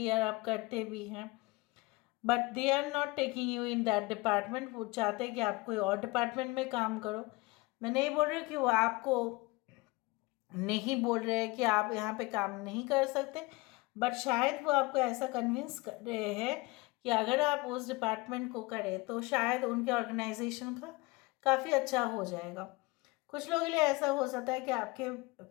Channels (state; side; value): quieter; right; 23.5 dB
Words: और आप करते भी हैं, but they are not taking you in that department. वो चाहते हैं कि आप कोई और डिपार्टमेंट में काम करो। मैं नहीं बोल रही हूँ कि वो आपको नहीं बोल रहे हैं कि आप यहाँ पे काम नहीं कर सकते, बट शायद वो आपको ऐसा कन्विंस कर रहे हैं कि अगर आप उस डिपार्टमेंट को करें तो शायद उनके ऑर्गेनाइजेशन का काफ़ी अच्छा हो जाएगा। कुछ लोगों के लिए ऐसा हो सकता है कि आपके